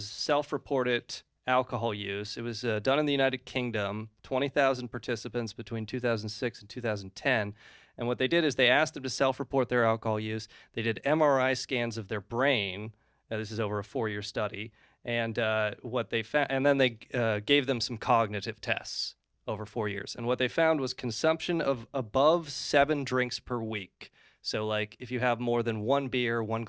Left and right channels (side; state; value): both; identical; correlation 1.00